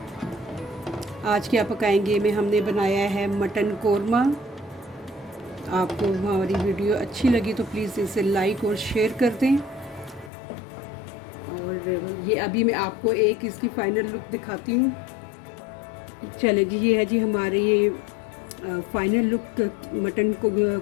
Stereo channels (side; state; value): right; drops out; at 10.3 s